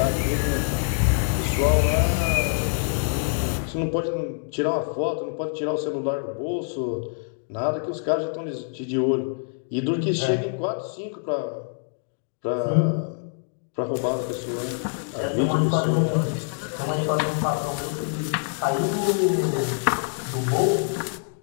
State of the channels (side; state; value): right; silent; digital silence